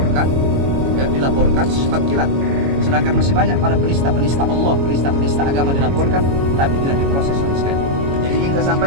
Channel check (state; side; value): late; left; 22 ms